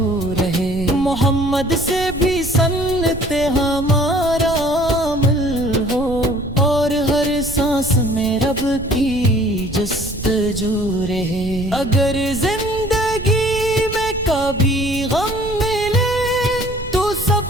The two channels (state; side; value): noise; right; rumble, 11 dB below the sound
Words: رہے محمد سے بھی سنت ہمارا عمل ہو اور ہر سانس میں رب کی جستجو رہے اگر زندگی میں کبھی غم ملے تو